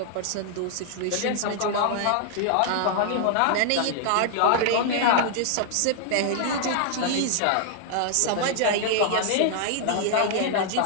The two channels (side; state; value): both; different; correlation 0.00